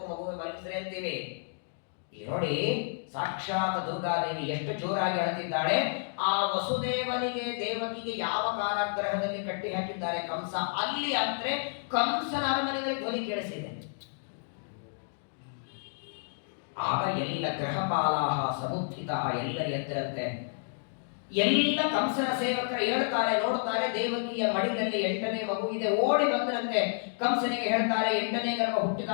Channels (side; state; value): right; silent; digital silence